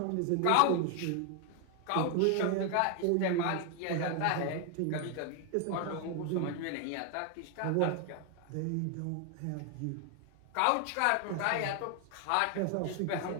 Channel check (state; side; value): different; both; correlation 0.00